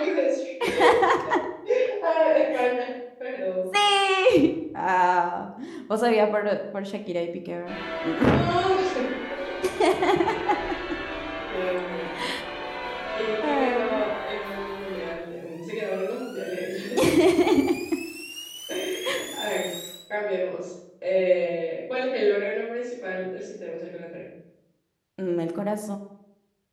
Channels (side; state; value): both; identical; correlation 1.00